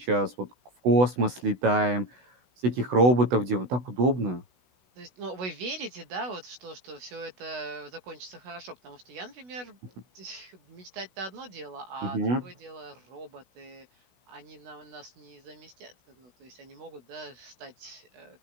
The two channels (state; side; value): late; left; 16 ms